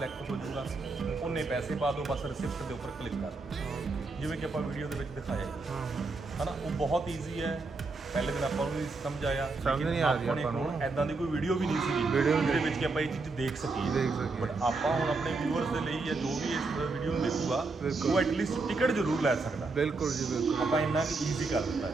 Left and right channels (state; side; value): quieter; left; 3.7 dB